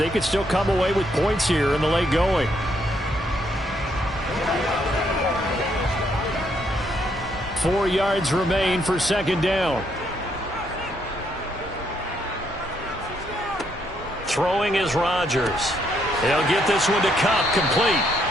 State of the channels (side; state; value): both; normal; correlation 0.73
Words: could still come away with points here in the late going. Four yards remain for 2nd down. Throwing is Rodgers. He'll get this one to Kupp, complete.